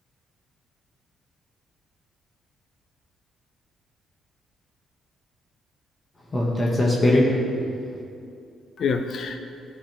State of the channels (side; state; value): both; normal; correlation 0.83